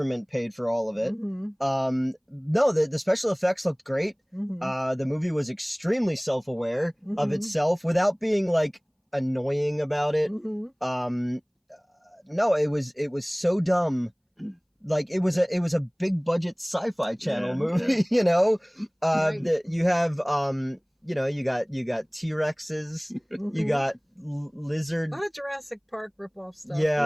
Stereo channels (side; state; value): both; identical; correlation 1.00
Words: paid for all of it. No, the special effects looked great. The movie was extremely self-aware of itself without being like annoying about it. No, it was so dumb. Like it was a big budget sci-fi channel movie, you know. You have you got T-Rexes, you got lizard. A lot of Jurassic Park rip-off stuff.